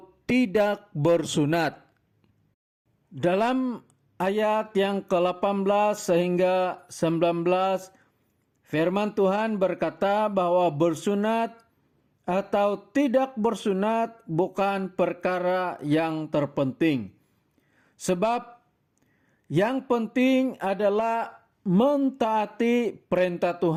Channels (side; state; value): both; identical; correlation 1.00